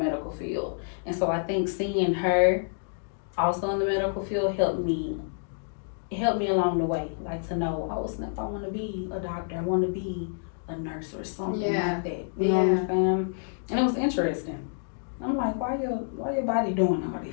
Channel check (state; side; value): silent; right; digital silence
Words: field, and so I think seeing her also in the medical field helped me along the way, like to know, oh snap, I want to be a doctor, I want to be a nurse or something like that. You know what I'm saying? And it was interesting. I'm like, why your body doing all